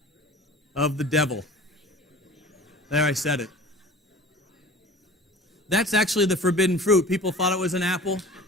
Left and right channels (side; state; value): both; normal; correlation 0.41